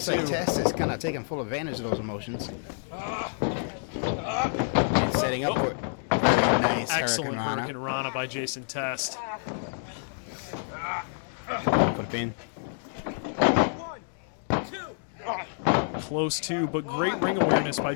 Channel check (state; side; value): silent; right; digital silence